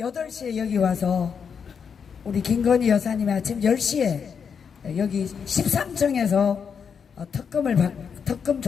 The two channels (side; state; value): right; quieter; 6.6 dB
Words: 여기 와서 우리 김건희 여사님이 아침 10시에 여기 13층에서 특검